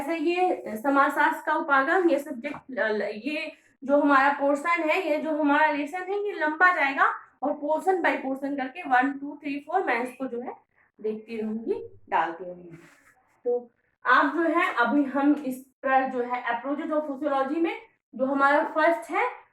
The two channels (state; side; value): identical; both; correlation 1.00